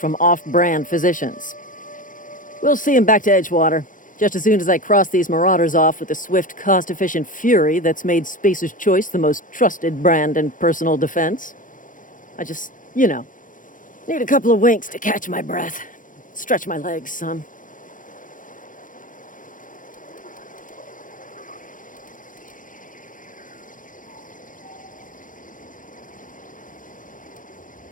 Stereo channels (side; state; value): right; late; 0.38 ms